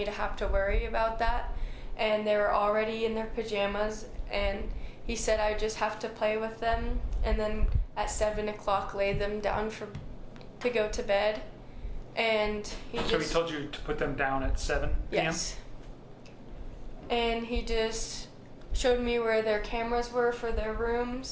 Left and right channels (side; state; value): both; identical; correlation 1.00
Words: to have to worry about that. And they were already in their pajamas, and he said I just have to play with them and then at 7 o'clock lay them down to go to bed. And he told you to put them down at 7 p.m.? Yes. And he just showed me where their cameras were for their